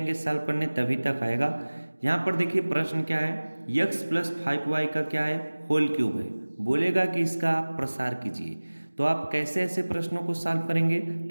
सॉल्व करने तभी तक आएगा। यहाँ पर देखिए प्रश्न क्या है, x प्लस 5y का क्या है, होल क्यूब है। बोलेगा कि इसका आप प्रसार कीजिए। तो आप कैसे ऐसे प्रश्नों को सॉल्व करेंगे,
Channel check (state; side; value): inverted; both; correlation -1.00